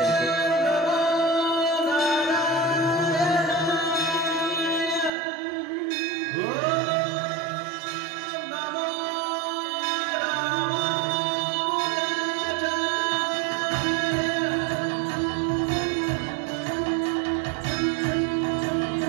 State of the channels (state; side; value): drops out; left; at 5.1 s